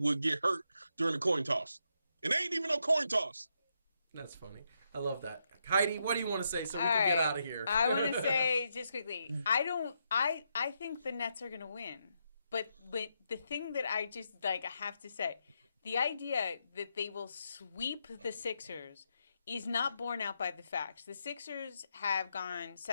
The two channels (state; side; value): inverted; both; correlation -0.81